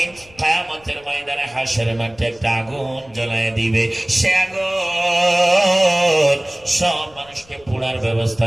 কিয়ামতের ময়দানে হাশরের মাঠে একটা আগুন জ্বালায় দিবে। সে আগুন সব মানুষকে পোড়ার ব্যবস্থা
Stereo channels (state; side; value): noise; left; rumble, 27 dB below the sound